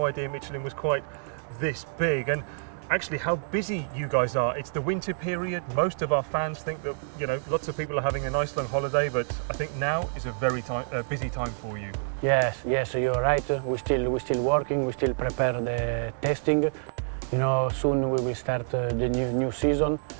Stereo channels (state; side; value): silent; left; digital silence